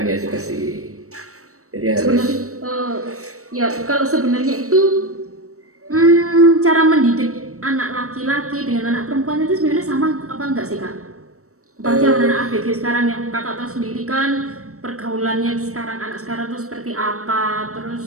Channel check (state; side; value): late; left; 0.65 ms